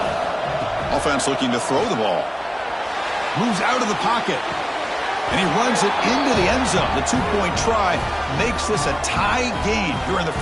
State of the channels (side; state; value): both; identical; correlation 1.00